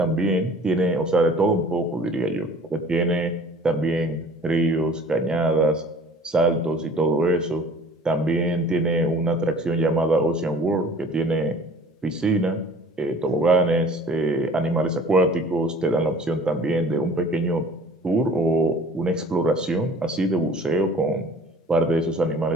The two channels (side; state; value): both; normal; correlation 0.48